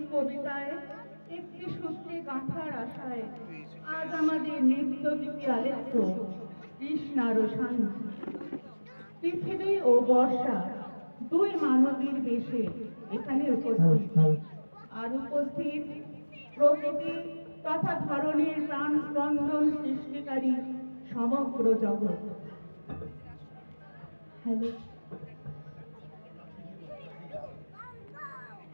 কবিতায় একটি সূত্রে গাঁথার আশায় আজ আমাদের নৃত্য গীতি আলেখ্য কৃষ্ণার শান্তি। পৃথিবী ও বর্ষা দুই মানবীর বেশে এখানে উপস্থিত, আর উপস্থিত প্রকৃতি তথা ধরনের প্রাণ স্পন্দন সৃষ্টিকারী সমগ্র জগৎ। হ্যালো,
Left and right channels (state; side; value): inverted; both; correlation -1.00